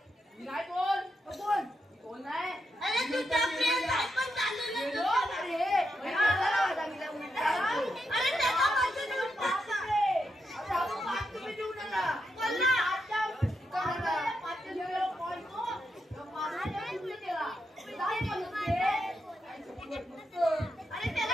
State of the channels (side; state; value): both; normal; correlation 0.83